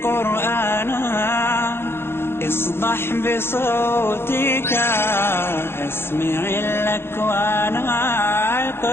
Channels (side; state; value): right; late; 0.11 ms